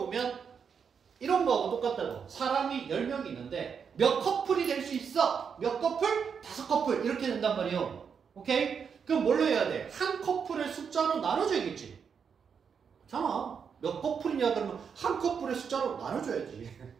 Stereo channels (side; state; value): left; quieter; 6.6 dB